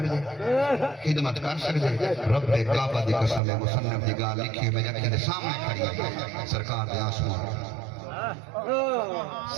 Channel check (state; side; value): drops out; left; at 3.4 s